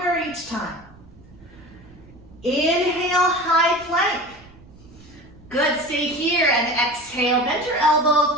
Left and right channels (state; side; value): noise; right; rumble, 23 dB below the sound